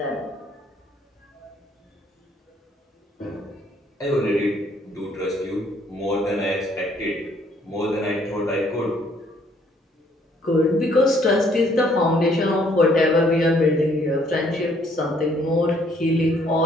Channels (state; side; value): normal; both; correlation 0.65